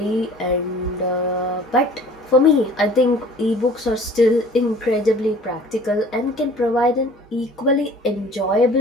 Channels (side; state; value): both; normal; correlation 0.48